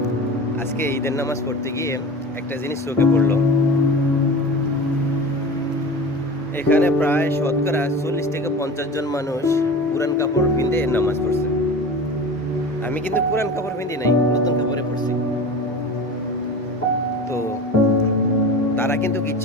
আজকে ঈদের নামাজ পড়তে গিয়ে একটা জিনিস চোখে পড়লো। এখানে প্রায় শতকরা 40 থেকে 50 জন মানুষ পুরান কাপড় পিঁধে নামাজ পড়ছে। আমি কিন্তু পুরান কাপড় পিঁধি নাই, নতুন কাপড়ে পড়ছি। তো তারা কিন্তু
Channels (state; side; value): normal; both; correlation 0.33